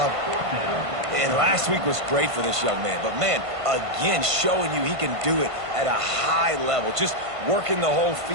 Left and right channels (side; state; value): left; late; 1.5 ms